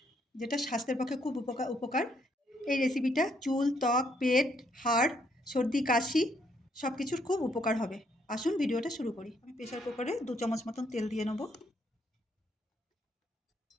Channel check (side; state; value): both; normal; correlation 0.71